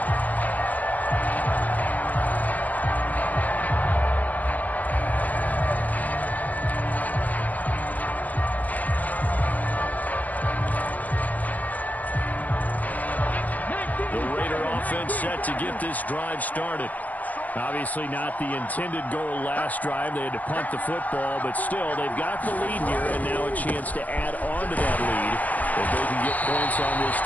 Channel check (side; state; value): right; late; 0.079 ms